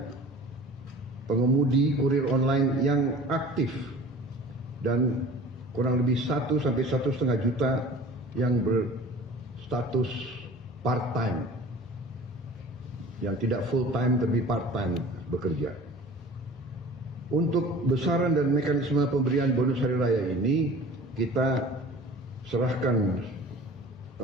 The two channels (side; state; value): both; normal; correlation 0.43